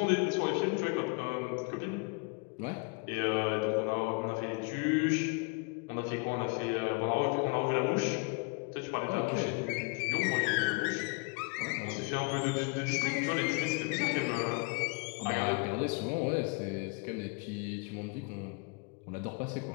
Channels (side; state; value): right; quieter; 32.7 dB